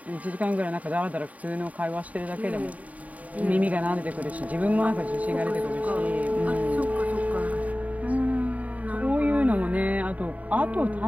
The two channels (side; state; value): left; late; 0.070 ms